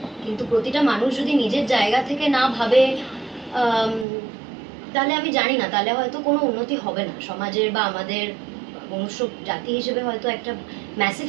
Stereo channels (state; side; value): drops out; left; at 4.0 s